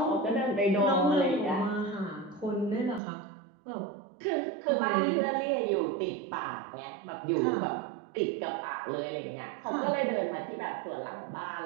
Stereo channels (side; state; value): left; drops out; at 3.0 s